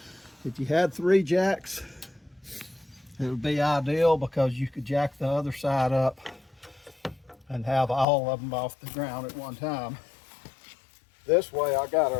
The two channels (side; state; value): right; drops out; at 8.1 s